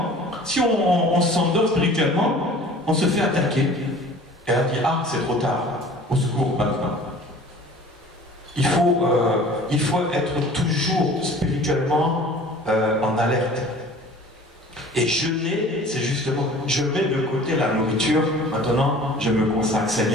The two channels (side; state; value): both; normal; correlation 0.46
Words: si on s'endort spirituellement, on se fait attaquer. Et on dit, ah, c'est trop tard, au secours maintenant. Il faut être toujours spirituellement en alerte. Et jeûner, c'est justement, je mets de côté la nourriture, maintenant je me consacre,